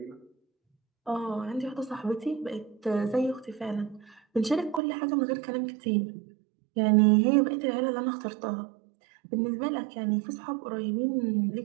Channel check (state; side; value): drops out; left; at 4.8 s